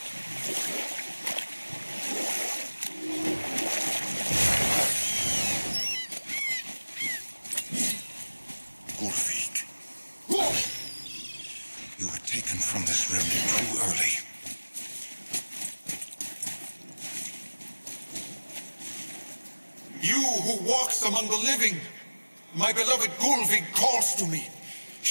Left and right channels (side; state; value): both; inverted; correlation -1.00